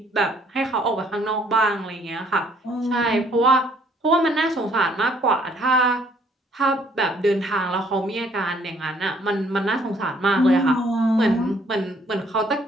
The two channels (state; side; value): normal; both; correlation 0.63